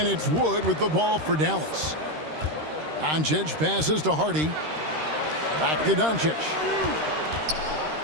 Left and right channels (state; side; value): late; left; 13 ms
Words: it's Wood with the ball for Dallas. Doncic passes to Hardy. Back to Doncic.